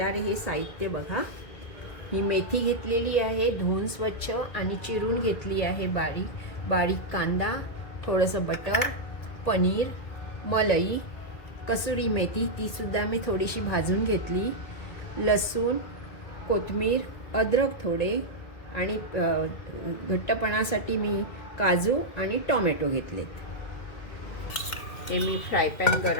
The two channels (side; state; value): right; late; 2.2 ms